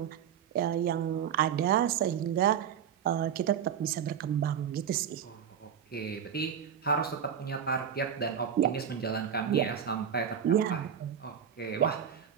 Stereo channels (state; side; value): quieter; left; 8.3 dB